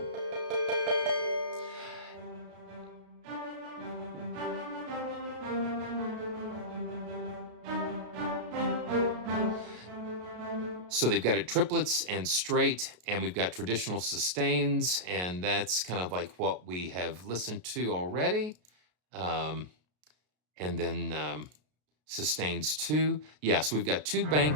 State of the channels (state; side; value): late; left; 33 ms